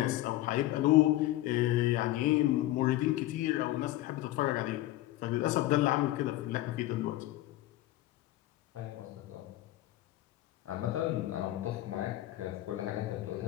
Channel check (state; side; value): quieter; right; 15.8 dB